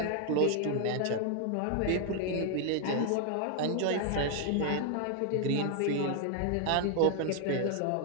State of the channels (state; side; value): different; both; correlation 0.00